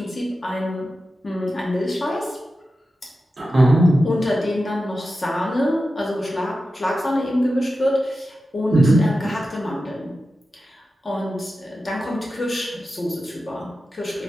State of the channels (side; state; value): both; normal; correlation 0.92